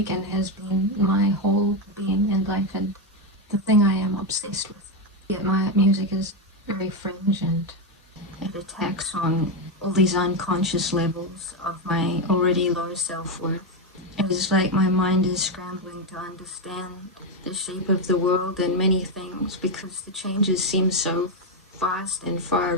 and has been my whole being and life and the thing I am obsessed with. Yet my music is very fringe and it attacks on all these unconscious levels of my already low self-worth. It is like my mind is scrambling to understand the shape of the world and many things because the changes seem so fast and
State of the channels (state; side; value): normal; both; correlation 0.07